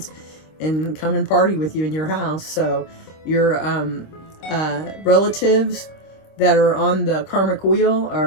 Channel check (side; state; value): right; late; 26 ms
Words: and come and party with you in your house. So your relatives that are on the karmic wheel